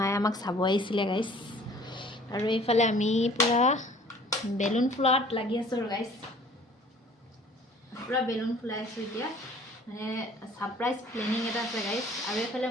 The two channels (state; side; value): normal; both; correlation 0.52